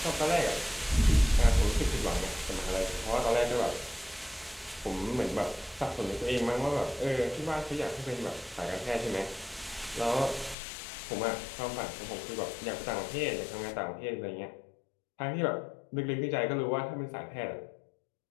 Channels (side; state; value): right; drops out; at 10.6 s